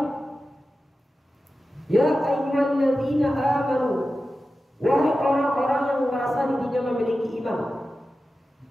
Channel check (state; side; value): normal; both; correlation 0.93